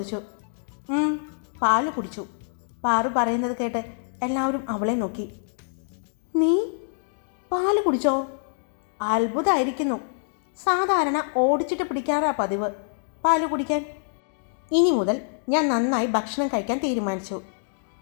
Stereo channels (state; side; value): silent; right; digital silence